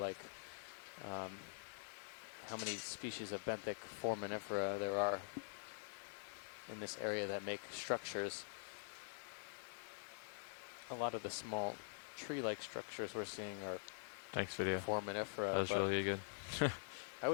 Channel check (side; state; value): right; silent; digital silence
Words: how many species of benthic foraminifera there are in this area that make structures. A lot of the small tree-like structures we're seeing are foraminifera. That was really good. I